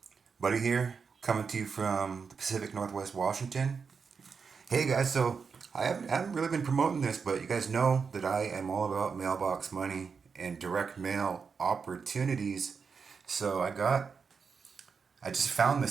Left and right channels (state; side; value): quieter; left; 5.6 dB